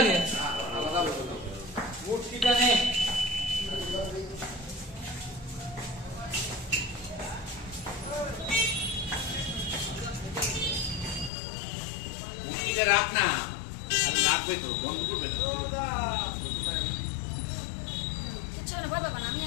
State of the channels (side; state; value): right; drops out; at 11.3 s